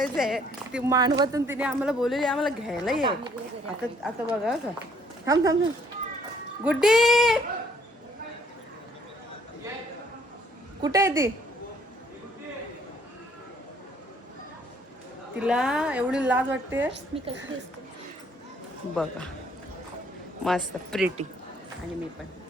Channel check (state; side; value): normal; both; correlation 0.63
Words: ती मानवातून तिने आम्हाला बोललेली आम्हाला घ्यायला ये. आता आता बघा का. थांब थांब थांब. गुड्डी कुठे आहे ती. तिला एवढी लाज वाटते. मी कशी दिसते बघा मस्त प्रिटी. आणि मी पण